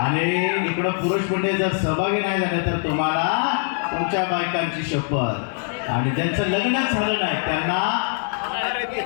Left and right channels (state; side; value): silent; right; 56 dB below the other